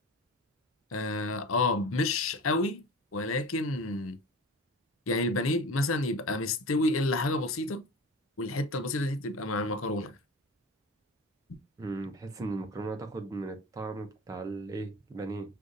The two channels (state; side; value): normal; both; correlation 0.34